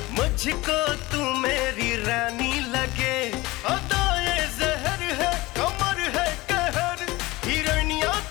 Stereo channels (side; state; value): right; quieter; 20.7 dB